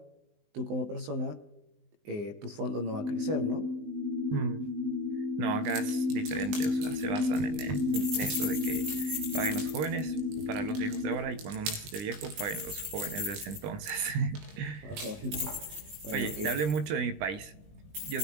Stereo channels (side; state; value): left; late; 20 ms